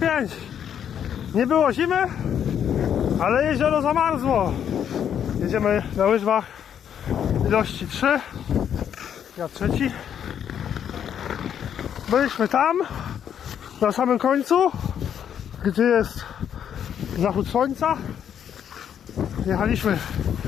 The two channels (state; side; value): quieter; right; 9.0 dB